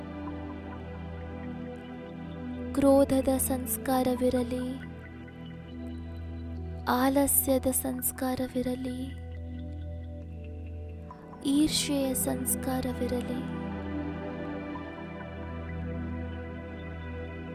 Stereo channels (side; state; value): both; identical; correlation 1.00